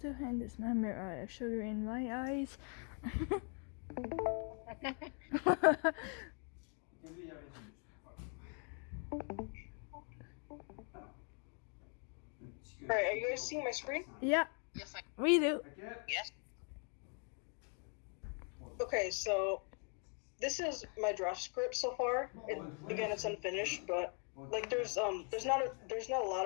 hand this number sugar in my eyes. Alright, are you guys seeing my screen? Yeah, Yes, we do. yes. Okay, so this is my draft script so far. Again, it's unfinished, but like there's not a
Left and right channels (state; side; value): quieter; right; 39.9 dB